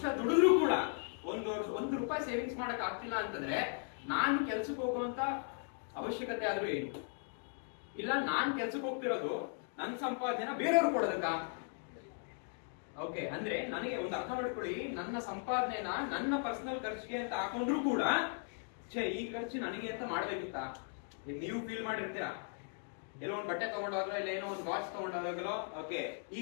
ದುಡಿದ್ರು ಕೂಡ 1 ರೂಪಾಯಿ ಸೇವಿಂಗ್ಸ್ ಮಾಡಕ್ ಆಗ್ತಿಲ್ಲ ಅಂತಂದ್ರೆ ನಾನು ಕೆಲ್ಸಕ್ಕೆ ಹೋಗುವಂತ ಅವಶ್ಯಕತೆ ಆದ್ರೂ ಏನು ಇಲ್ಲ. ನಾನ್ ಕೆಲ್ಸಕ್ಕೆ ಹೋಗ್ತಿರೋದು ನನ್ನ ಸಂಪಾದನೆನ ಬೇರೆಯವ್ರು ಕೊಡೋದಕ್ಕ? ಓಕೆ, ಅಂದ್ರೆ ನನಗೆ ಒಂದು ಅರ್ಥ ಮಾಡ್ಕೊಳ್ಳಿ, ನನ್ನ ಸಂಪಾದನೆನ ನನ್ನ ಪರ್ಸನಲ್ ಖರ್ಚಿಗೆ ಅಂತ ಹಾಕೊಂಡ್ರು ಕೂಡ ಈ ಖರ್ಚು ನನಗೆ ಅಂತ ಮಾಡ್ಬೇಕಿತ್ತ? ನೀವು ಫೀಲ್ ಮಾಡಿರ್ತೀರಾ, ಎಲ್ಲೋ ಒಂದು ಬಟ್ಟೆ ತಗೊಂಡಾಗ್ಲೋ, ಇಲ್ಲ ಏನೋ ಒಂದು ವಾಚ್ ತಗೊಂಡಾಗ್ಲೋ, ಓಕೆ ಈ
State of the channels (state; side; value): silent; right; 53 dB below the other